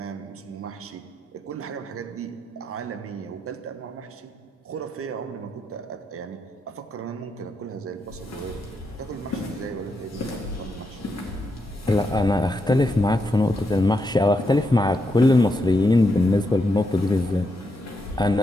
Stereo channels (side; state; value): both; normal; correlation 0.82